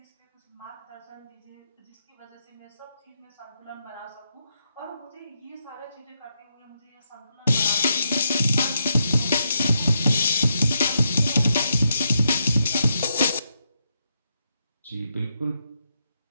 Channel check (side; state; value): both; inverted; correlation -0.81